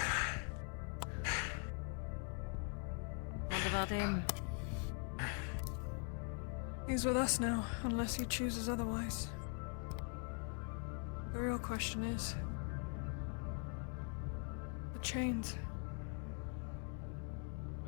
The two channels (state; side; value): quieter; right; 38.8 dB